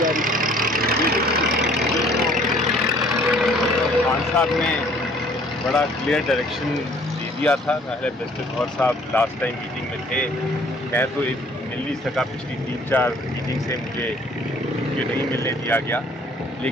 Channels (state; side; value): normal; both; correlation 0.57